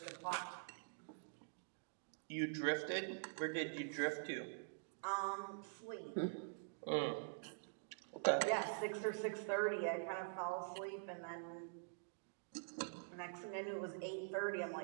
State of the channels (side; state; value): left; silent; digital silence